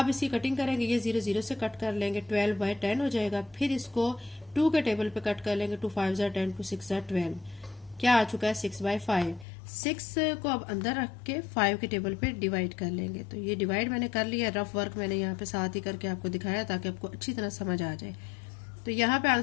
इसकी कटिंग करेंगे, ये 0 0 से कट कर लेंगे, 12/10 हो जाएगा। फिर इसको 2 के टेबल पे कट कर लेंगे, 2 5 ज़ा 10, 2 6 ज़ा 12, क्या आ चुका है 6/5। 6 को अब अंदर रख के 5 के टेबल पे डिवाइड कर लेंगे। तो ये डिवाइड मैंने कर लिया, रफ वर्क मैंने यहाँ पे साथ ही करके आपको दिखाया ताकि आपको अच्छी तरह समझ आ जाए। तो यहाँ पे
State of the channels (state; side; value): drops out; right; at 9.5 s